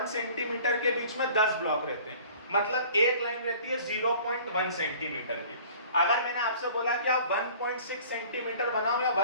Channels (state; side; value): inverted; both; correlation -0.48